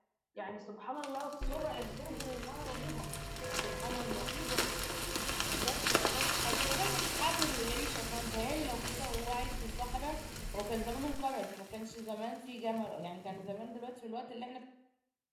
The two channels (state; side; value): identical; both; correlation 1.00